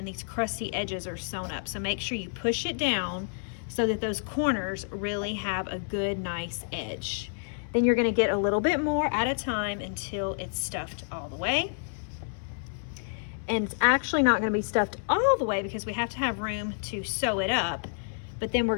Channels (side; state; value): right; silent; 58 dB below the other